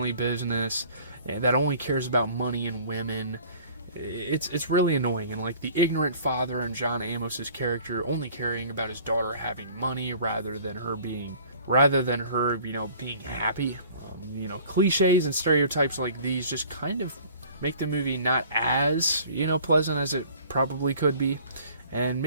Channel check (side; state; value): both; inverted; correlation -0.50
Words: business that only cares about money and women. It's really annoying, and like the ignorant father and John Amos's character only caring about his daughter having money rather than her being happy. Cliches and stereotypes like these just kind of make the movie not as pleasant as it probably could be. And